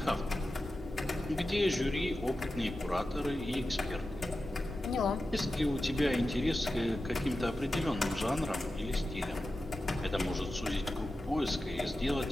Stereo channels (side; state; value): both; normal; correlation 0.92